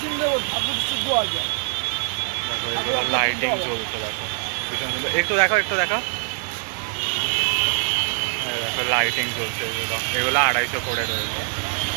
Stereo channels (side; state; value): left; silent; 61 dB below the other